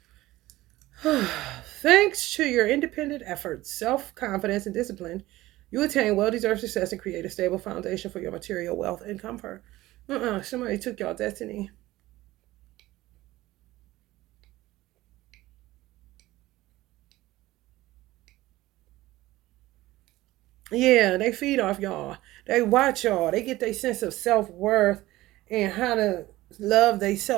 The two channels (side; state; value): left; quieter; 17.4 dB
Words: Thanks to your independent efforts, self-confidence, and discipline, you attain well-deserved success and create a stable foundation for your material wealth and comfort. Somebody took y'all destiny. Yeah, they feed off y'all. They watch y'all. They get their sense of self-worth and how to love